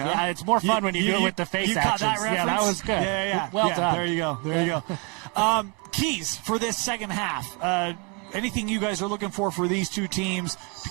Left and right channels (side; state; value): left; quieter; 33.1 dB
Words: Yeah, it's more fun when you do it with the face actions. Caught that reference? Yeah, that was good. Yeah. Well done. There you go. Keys for this second half. Anything you guys are looking for these two teams to